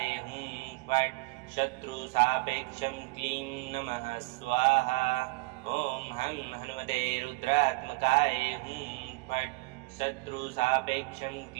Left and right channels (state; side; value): quieter; left; 26.1 dB